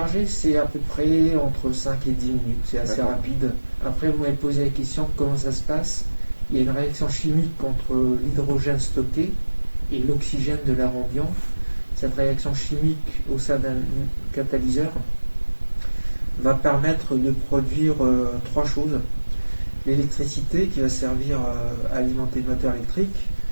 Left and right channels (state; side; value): inverted; both; correlation -1.00